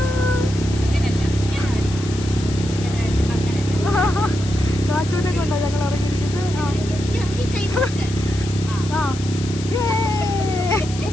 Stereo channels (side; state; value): left; noise; hiss, 14 dB below the sound